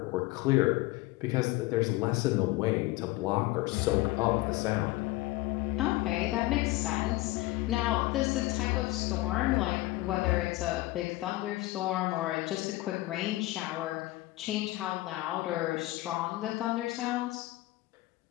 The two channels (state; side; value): quieter; right; 19.3 dB